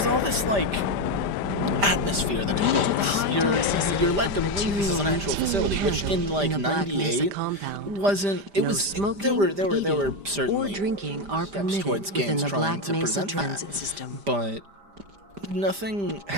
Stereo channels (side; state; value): left; late; 5.0 ms